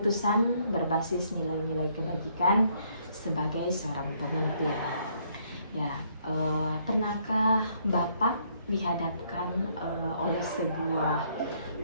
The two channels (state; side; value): inverted; both; correlation -0.69